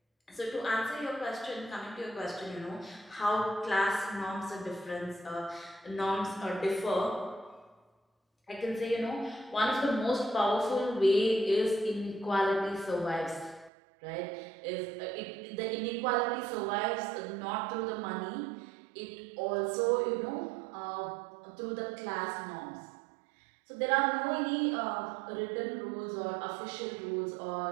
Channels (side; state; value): left; drops out; at 13.7 s